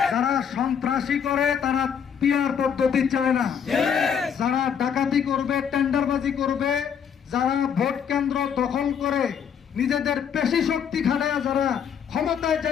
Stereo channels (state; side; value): quieter; right; 7.7 dB